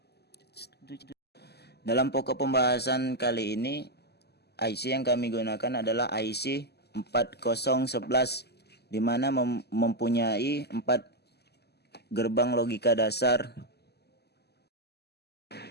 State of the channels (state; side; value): late; right; 0.47 ms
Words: pokok pembahasan kali ini, IC yang kami gunakan adalah IC 4011, di mana mempunyai 4 gerbang logika dasar.